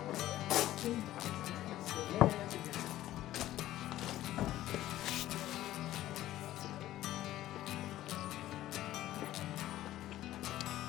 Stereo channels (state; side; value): quieter; right; 14.3 dB